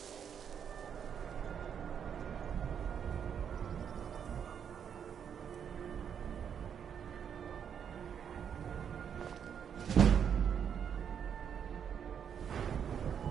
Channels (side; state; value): left; quieter; 7.9 dB